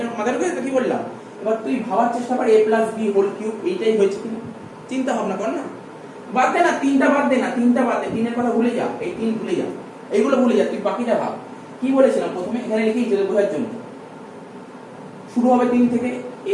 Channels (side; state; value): both; identical; correlation 1.00